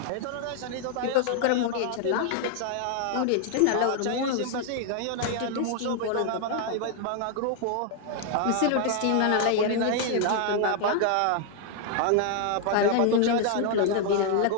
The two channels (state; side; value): different; both; correlation 0.00